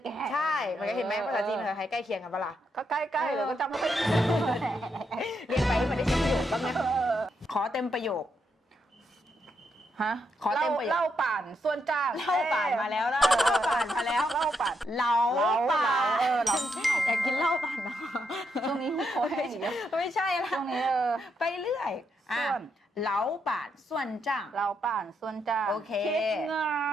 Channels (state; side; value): normal; both; correlation 0.80